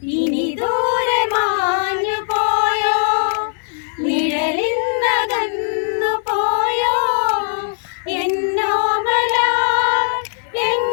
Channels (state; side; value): silent; right; 67 dB below the other